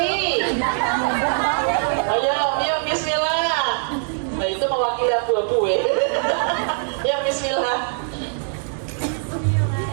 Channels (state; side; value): silent; left; digital silence